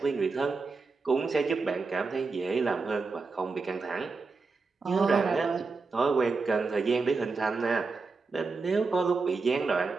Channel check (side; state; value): left; quieter; 4.2 dB